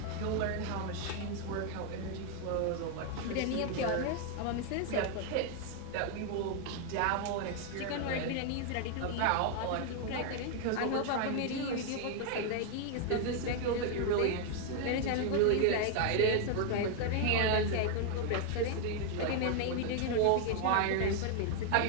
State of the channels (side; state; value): both; different; correlation 0.00